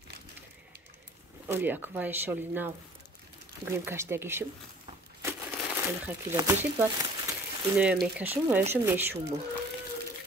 оли як ва иша оли нав гӯем каштагишим оли хакида бешид баъд иноя мекашум ва иша мешумо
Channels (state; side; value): normal; both; correlation 0.51